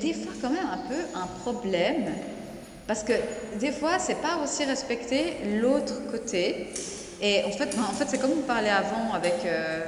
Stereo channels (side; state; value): both; identical; correlation 1.00